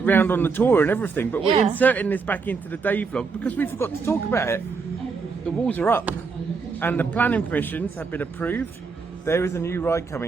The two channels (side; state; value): left; quieter; 4.9 dB